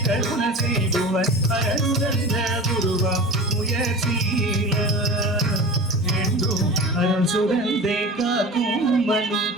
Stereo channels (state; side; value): normal; both; correlation 0.34